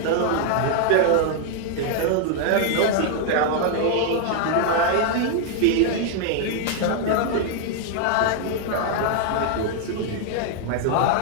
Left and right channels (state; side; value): different; both; correlation 0.00